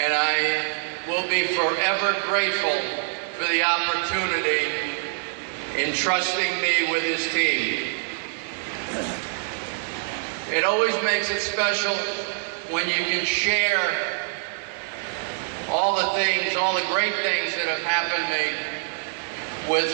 I will be forever grateful for the opportunity in trusting me with his team. It always makes it special when you can share all the things, all the great things that have happened to me with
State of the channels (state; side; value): silent; left; digital silence